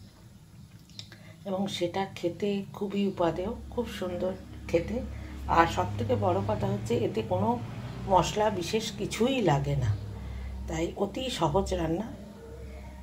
এবং সেটা খেতে খুবই উপাদেয়, খুব সুন্দর খেতে। আর সবথেকে বড় কথা হচ্ছে এতে কোনো মশলা বিশেষ কিছুই লাগে না, তাই অতি সহজ রান্না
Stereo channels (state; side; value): identical; both; correlation 1.00